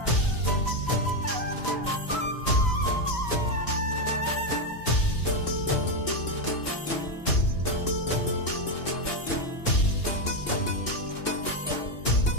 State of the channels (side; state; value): right; late; 3.0 ms